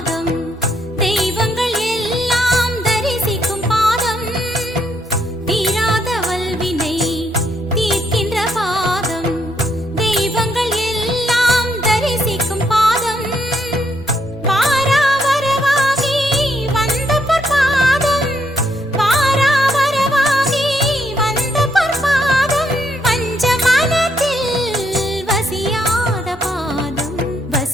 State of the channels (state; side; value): normal; both; correlation 0.74